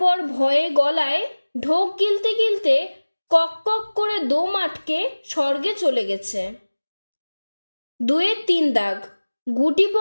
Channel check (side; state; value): both; inverted; correlation -1.00